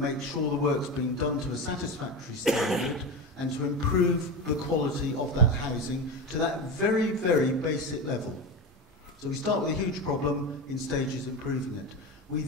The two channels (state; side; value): normal; both; correlation 0.21